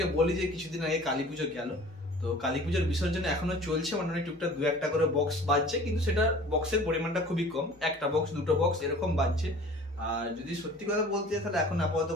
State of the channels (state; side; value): normal; both; correlation 0.45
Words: বলি যে কিছুদিন আগে কালী পুজো গেল, তো কালী পুজোর বিসর্জন এখনো চলছে, মানে টুকটাক দু একটা করে বক্স বাজছে, কিন্তু সেটা বক্সের পরিমাণটা খুবই কম, একটা বক্স দুটো বক্স এরকম বাজছে। আর যদি সত্যি কথা বলতে চাই তাহলে এখন আপাতত